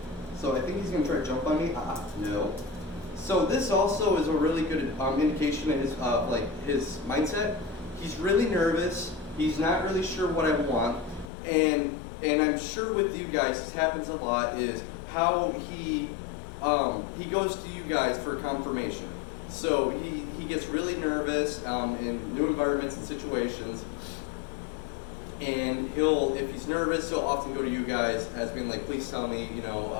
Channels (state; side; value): drops out; right; at 11.3 s